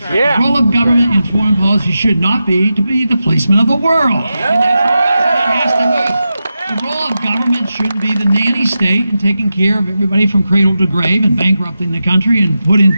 right. The role of government in foreign policy should not be to be the policeman of the world. And that has to move. The role of government shouldn't be the nanny state and taking care of everybody from cradle to grave and bankrupting the country and put in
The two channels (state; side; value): inverted; both; correlation -0.90